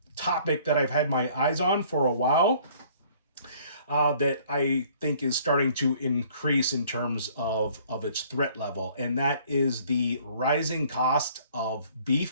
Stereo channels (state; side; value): inverted; both; correlation -0.57